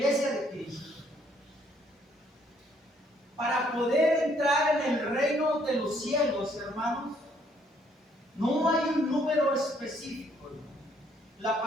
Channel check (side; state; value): both; normal; correlation 0.66